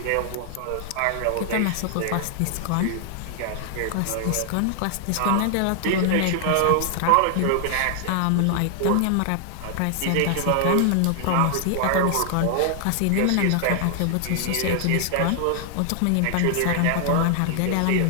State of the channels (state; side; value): different; both; correlation 0.00